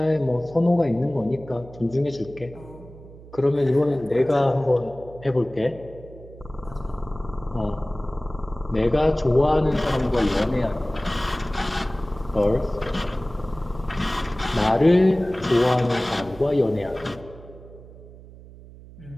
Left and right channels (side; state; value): right; noise; hum, 19 dB below the sound